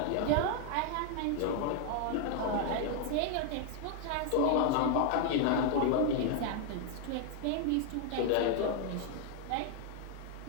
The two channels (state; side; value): different; both; correlation 0.00